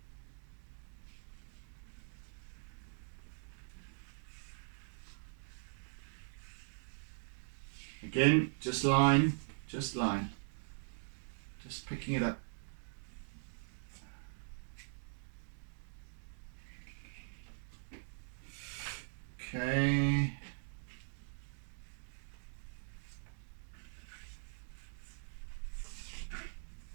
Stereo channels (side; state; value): left; silent; digital silence